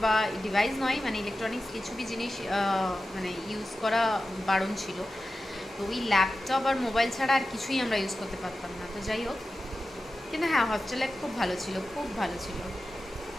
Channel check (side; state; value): both; normal; correlation 0.93